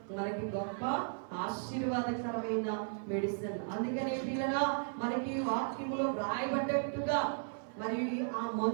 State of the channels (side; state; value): left; silent; 54 dB below the other